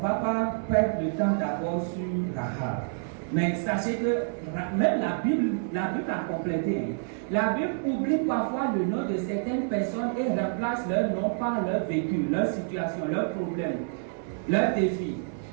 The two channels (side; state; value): left; silent; 59 dB below the other